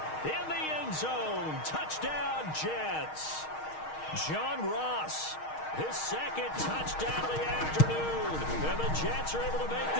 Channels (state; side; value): late; right; 6.4 ms